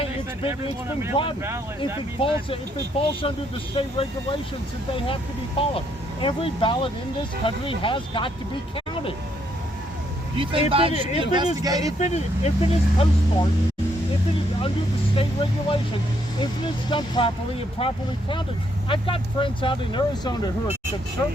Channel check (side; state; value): both; normal; correlation 0.73